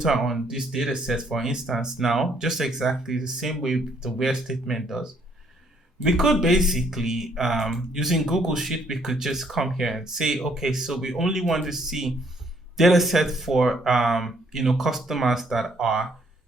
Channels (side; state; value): both; normal; correlation 0.67